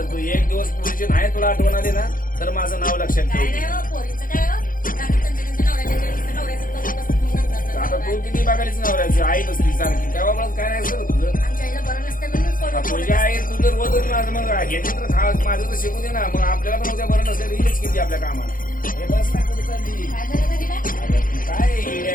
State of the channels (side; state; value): right; late; 0.40 ms